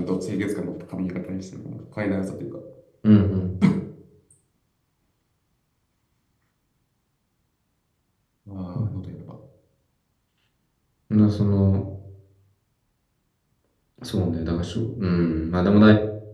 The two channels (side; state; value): both; identical; correlation 1.00